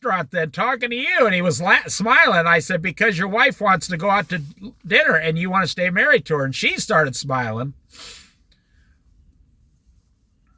then talking to you? And he was smiling. I said, because your wife wants to go out to dinner and you want to stay married to her. And she started smiling.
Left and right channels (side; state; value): both; identical; correlation 1.00